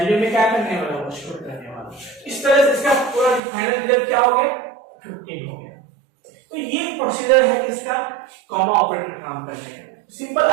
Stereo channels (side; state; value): left; drops out; at 3.4 s